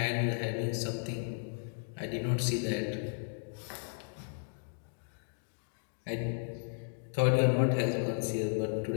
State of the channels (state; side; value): silent; right; digital silence